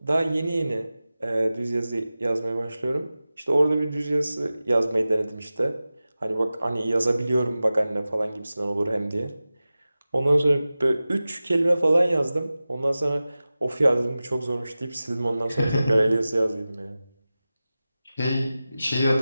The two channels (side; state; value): both; inverted; correlation -0.96